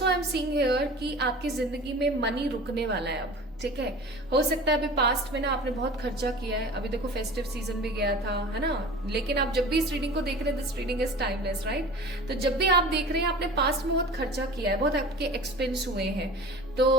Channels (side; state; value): both; normal; correlation 0.38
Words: I am seeing here कि आपकी जिंदगी में मनी रुकने वाला है अब। ठीक है, हो सकता है अभी पास्ट में ना आपने बहुत खर्चा किया है, अभी देखो फेस्टिव सीजन भी गया था, है ना, लेकिन आप जब भी इस रीडिंग को देख रहे हैं, this reading is timeless, right. तो जब भी आप देख रहे हैं आपने पास्ट में बहुत खर्चा किया है, बहुत आपके एक्सपेंस हुए हैं, तो